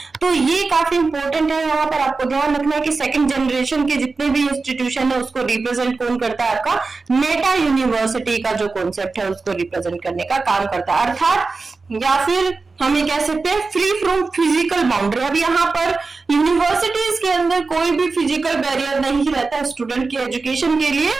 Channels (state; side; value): quieter; left; 4.1 dB